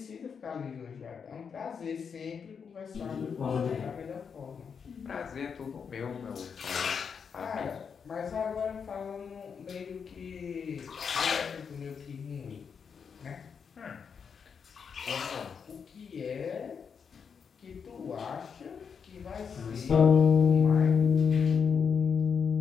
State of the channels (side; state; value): right; quieter; 6.4 dB